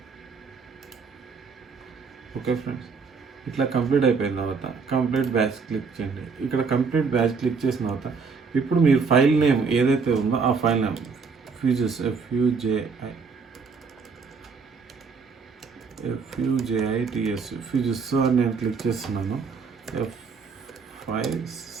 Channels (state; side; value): quieter; left; 5.2 dB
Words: Okay friends, ఇట్లా కంప్లీట్ అయిపోయిన తర్వాత కంప్లీట్ బ్యాచ్ క్లిక్ చేయండి. ఇక్కడ కంప్లీట్ బ్యాచ్ క్లిక్ చేసిన తర్వాత ఇప్పుడు మీరు ఫైల్ నేమ్ ఏదైతే ఉందో ఆ file name fuses FUJITS fuses అని నేను క్లిక్ చేస్తున్నాను.